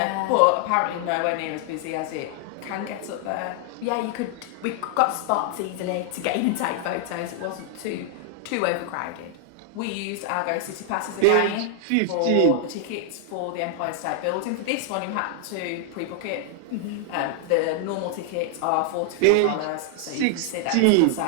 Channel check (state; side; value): different; both; correlation 0.00